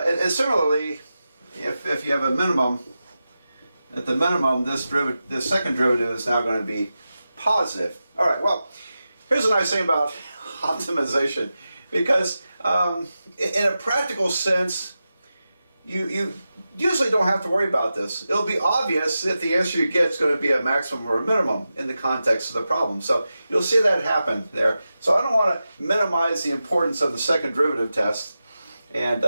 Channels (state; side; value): inverted; both; correlation -0.92